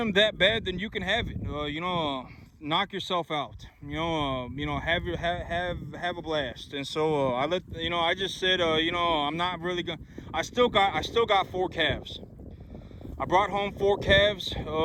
that bad, then you can have it. knock yourself out. Have a blast. And so I just said, I'm not really gonna. I still got 4 calves. I brought home 4 calves,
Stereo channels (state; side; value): identical; both; correlation 1.00